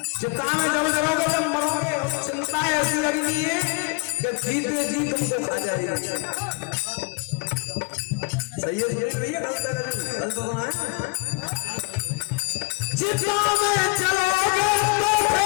चिंता में जब करोगे जब मरोगे। चिंता ऐसी लगी है कि जीते जी तुमको खा जाएगी। सही है? सुनिए भैया, गलत तो सुना है। चिता में चलोगे तो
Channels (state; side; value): quieter; right; 30.9 dB